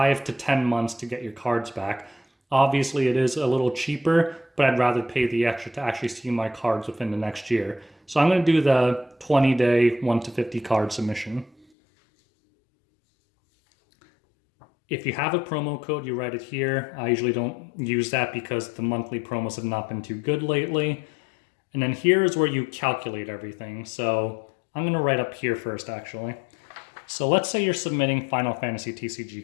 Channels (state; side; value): drops out; right; at 11.7 s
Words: to 10 months to get your cards back. Obviously, it is a little cheaper, but I'd rather pay the extra to actually see my cards within the next year. So I'm going to do the 20-day 1 to 50 card submission. If you have a promo code, you write it here. I usually don't use that because the monthly promos have not been too good lately. And then here is where you calculate everything. So I'm going to write up here first, actually. So let's say you're submitting Final Fantasy